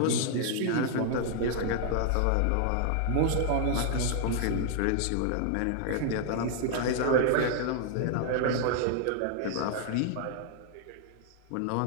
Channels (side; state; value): both; different; correlation 0.00